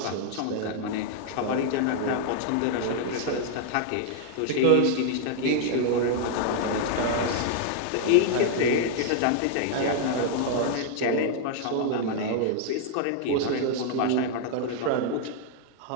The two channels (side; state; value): both; different; correlation 0.00